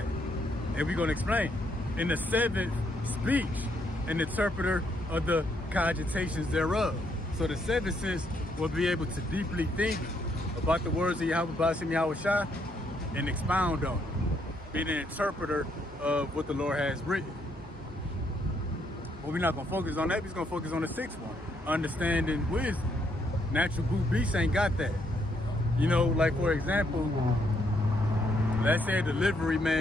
And we're gonna explain. In the 7th, speech, an interpreter of the cogitations thereof. So the 7th sense will be able to deeply think about the words of Yahweh B'Ashem Yahweh Shah and expound on it. Being an interpreter of what the Lord has written. But we're not gonna focus on that, we're just gonna focus on the 6th one. Understanding wisdom. Natural brute beasts ain't got that. You know, like for example, let's say a delivery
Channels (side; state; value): both; normal; correlation 0.73